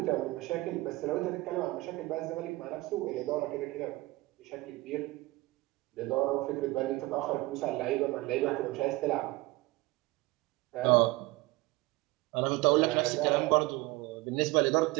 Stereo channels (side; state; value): left; quieter; 20.9 dB